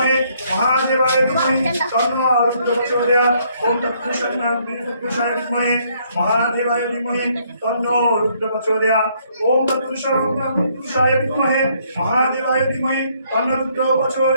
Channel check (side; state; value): both; inverted; correlation -0.68